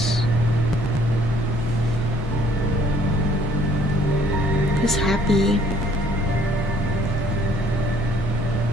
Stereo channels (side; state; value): both; normal; correlation 0.60